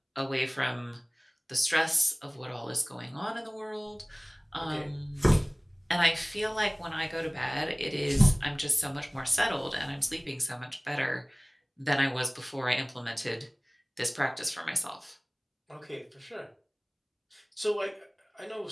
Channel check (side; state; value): both; identical; correlation 1.00